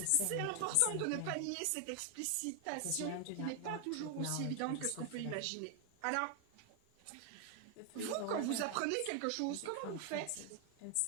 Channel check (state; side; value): different; both; correlation 0.01